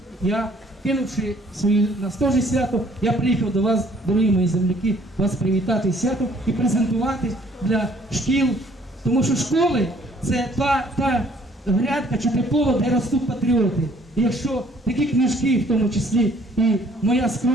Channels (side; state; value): both; normal; correlation 0.60